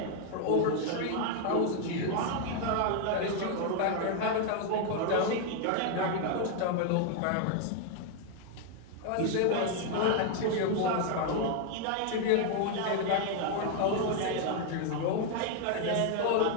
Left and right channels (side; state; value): both; different; correlation 0.00